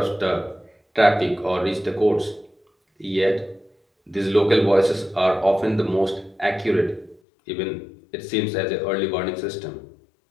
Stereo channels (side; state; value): right; drops out; at 7.2 s